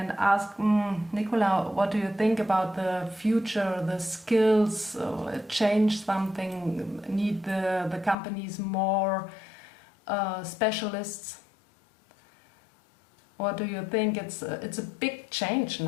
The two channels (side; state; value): right; drops out; at 8.2 s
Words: ask, Nicola, what do you think about the future, the skills, change something, need the companies more specialists? What do you think? It's a big change